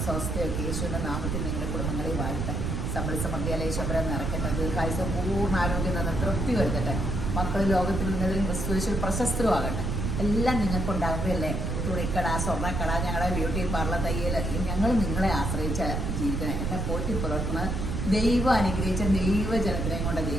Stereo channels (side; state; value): right; noise; rumble, 1 dB below the sound